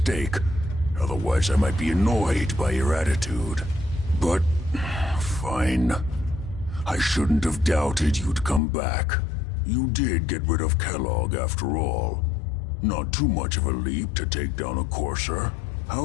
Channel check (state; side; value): drops out; right; at 8.6 s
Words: Otherwise, I might be annoyed by your attitude. But, fine. I shouldn't have doubted you'd come back. You did get rid of Kellogg after all. Not too much of a leap to take down a Courser.